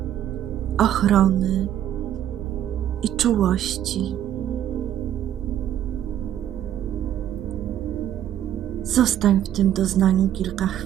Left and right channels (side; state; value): left; quieter; 11.1 dB